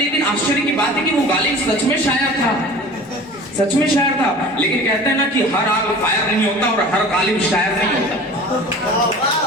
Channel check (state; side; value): normal; both; correlation 0.40